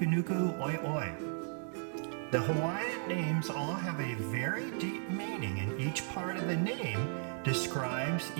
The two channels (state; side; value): silent; left; 54 dB below the other